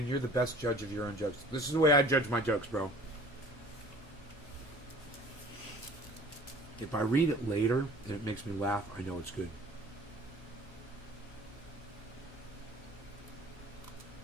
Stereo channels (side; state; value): both; normal; correlation 0.48